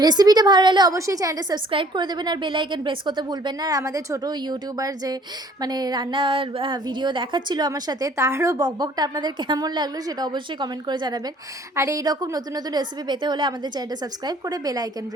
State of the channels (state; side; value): normal; both; correlation 0.56